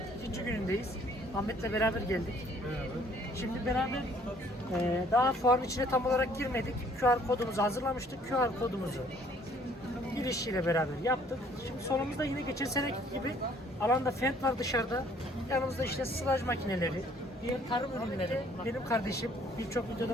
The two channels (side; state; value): both; normal; correlation 0.59